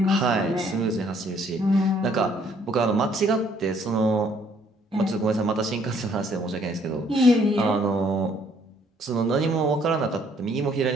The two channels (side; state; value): both; normal; correlation 0.64